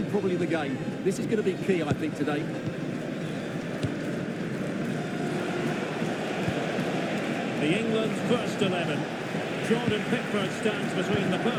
probably the game. This is going to be key, I think, today. The England first 11. Jordan Pickford stands between the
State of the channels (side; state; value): both; identical; correlation 1.00